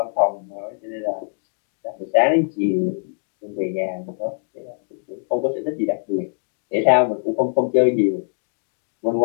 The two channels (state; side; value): silent; right; 63 dB below the other